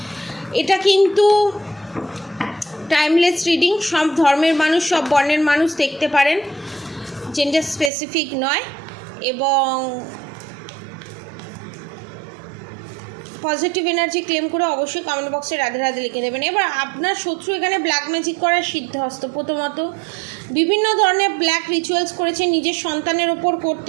এটা কিন্তু টাইমলেস রিডিং, সব ধর্মের মানুষ, সব বর্ণের মানুষ দেখতে পারেন, জেন্ডার স্পেসিফিক নয়। এবং পজিটিভ এনার্জি ক্লেম করে অবশ্যই কমেন্ট বক্সে রাধে রাধে লিখে দেবেন। এবার আপনার শত্রু এখানে ব্ল্যাক ম্যাজিক করার সিদ্ধহস্ত। প্রথমত বিভিন্ন ধরনের ব্ল্যাক রিচুয়ালস করেছে, নিজের সন্তানের ওপর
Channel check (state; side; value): drops out; left; at 7.9 s